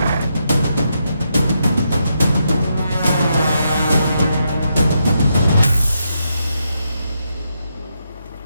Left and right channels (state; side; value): inverted; both; correlation -0.81